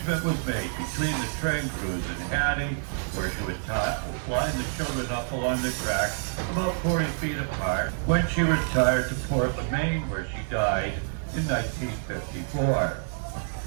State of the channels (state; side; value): silent; left; 60 dB below the other